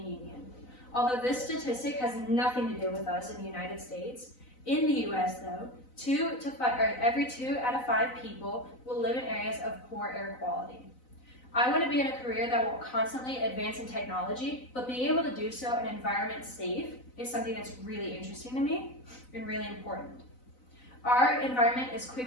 Union. Although this statistic has nothing to do with us in the United States, in the US though, every 2 out of 5 people will live in areas of poor air quality. I want to be in a career that will constantly advance in technology, but being able to do so in an environment safe is something that's really interesting to me and really important. Our environment is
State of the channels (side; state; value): right; late; 4.0 ms